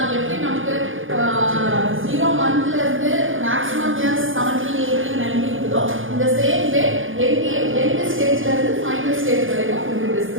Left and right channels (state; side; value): late; left; 0.58 ms